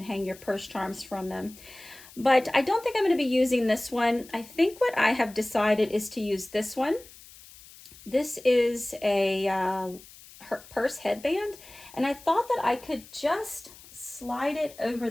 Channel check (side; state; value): left; noise; hiss, 20 dB below the sound